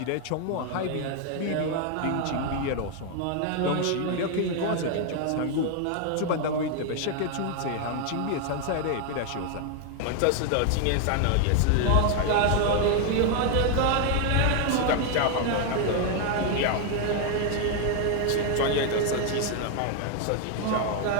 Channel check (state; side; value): different; both; correlation 0.00